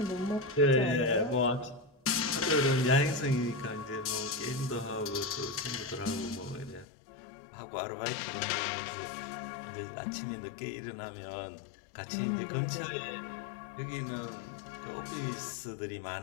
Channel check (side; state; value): right; drops out; at 6.9 s